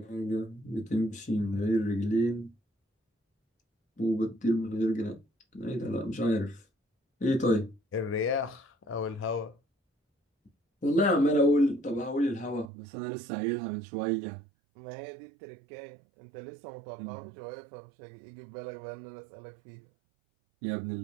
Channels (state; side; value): drops out; left; at 12.7 s